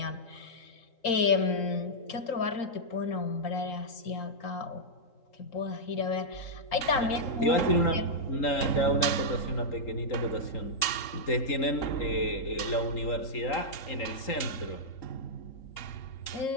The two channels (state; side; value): late; right; 3.8 ms